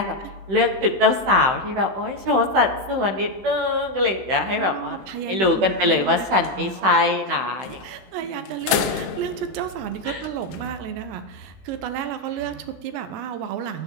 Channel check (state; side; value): late; left; 16 ms